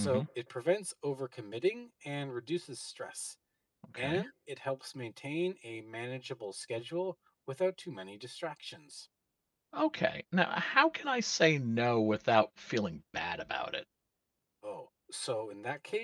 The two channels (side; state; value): both; identical; correlation 1.00